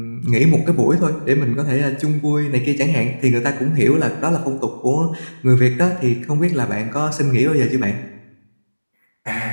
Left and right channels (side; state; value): both; inverted; correlation -1.00